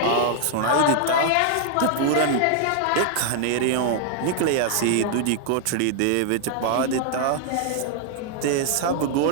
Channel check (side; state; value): both; different; correlation 0.00